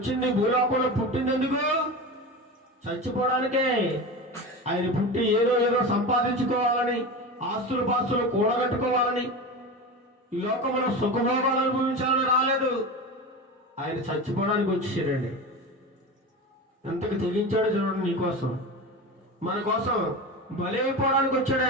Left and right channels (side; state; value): both; normal; correlation 0.26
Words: భూలోకంలో పుట్టింది ఎందుకు? చచ్చిపోవడానికే. ఆయన పుట్టి ఏదో సంపాదించుకోవాలని, ఆస్తులు పాస్తులు కూడగట్టుకోవాలని, ఈ లోకంలో సుఖభోగాలు అనుభవించాలని రాలేదు. ఆయన చచ్చిపోవడానికి వచ్చేసాడండి. ఎంతకు తెగించాడో చూడండి నీకోసం, మన కోసం బలి అయిపోవడానికి వచ్చాడు